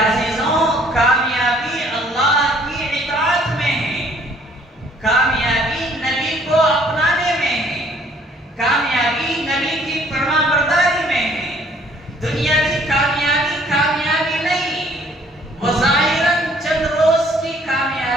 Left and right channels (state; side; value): normal; both; correlation 0.59